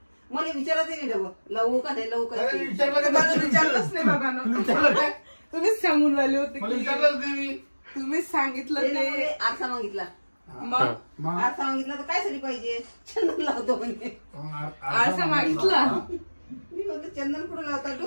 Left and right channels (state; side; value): inverted; both; correlation -1.00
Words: मला विचारत नाही डबल लावू का नाही लावू का. विचारलंच नाही बाबा. तुम्हीच सांगून राहिले होते. तुम्हीच सांगितलं ते. आरसा मागितला. मग आरसा मागितला तर काय साठी पाहिजे? चंदन लावतो म्हणे. आरसा मागितला. मी म्हणतो चंदन कुठं लावतात?